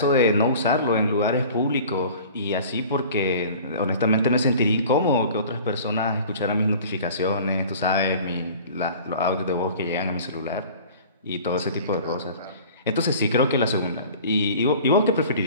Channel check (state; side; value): inverted; both; correlation -0.44